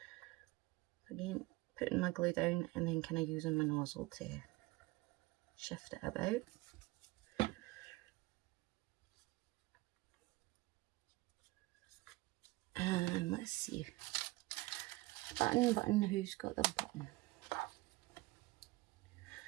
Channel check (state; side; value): quieter; left; 20.4 dB